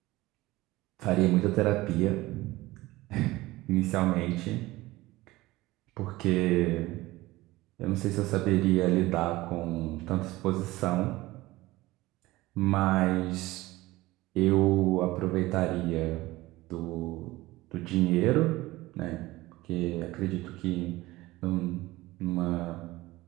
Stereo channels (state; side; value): quieter; left; 18.9 dB